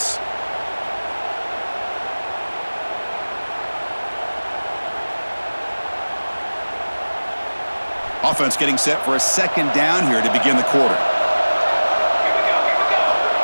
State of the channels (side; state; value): both; inverted; correlation -1.00